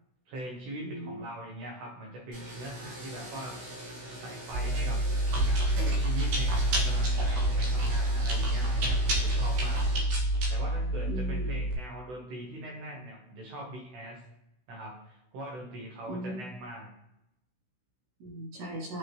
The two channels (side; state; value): left; late; 16 ms